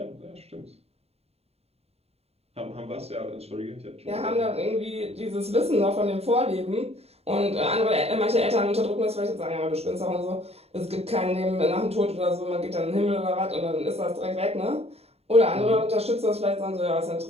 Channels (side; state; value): left; late; 0.30 ms